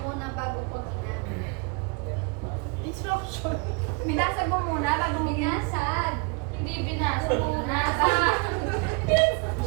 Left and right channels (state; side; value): quieter; left; 29.9 dB